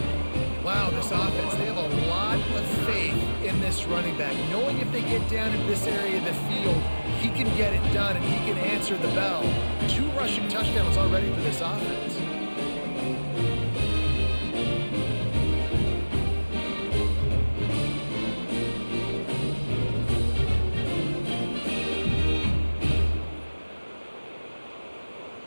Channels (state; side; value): inverted; both; correlation -1.00